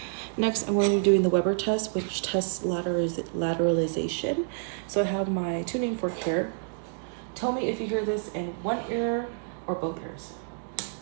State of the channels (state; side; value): silent; left; digital silence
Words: Next, I'm going to be doing the Weber test, which tests lateralization. So I have my tuning fork here. Tell me if you hear this in one ear or both ears.